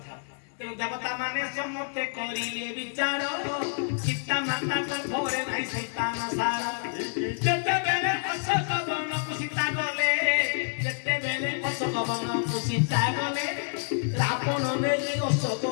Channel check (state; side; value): silent; right; digital silence